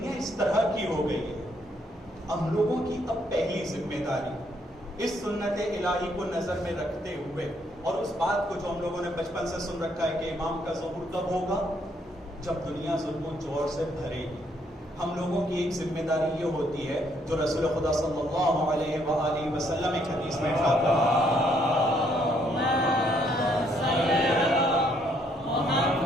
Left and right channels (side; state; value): both; normal; correlation 0.70